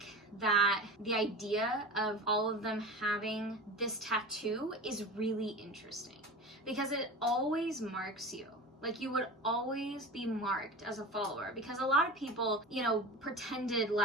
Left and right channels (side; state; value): both; normal; correlation 0.32